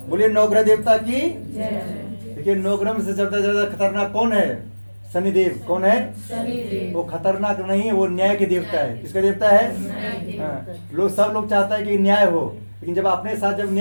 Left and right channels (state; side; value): inverted; both; correlation -1.00